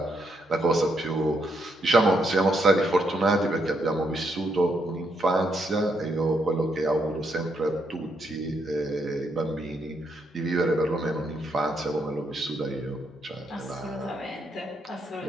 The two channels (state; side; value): normal; both; correlation 0.77